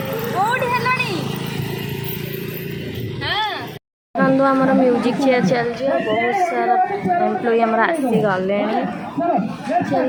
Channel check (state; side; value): identical; both; correlation 1.00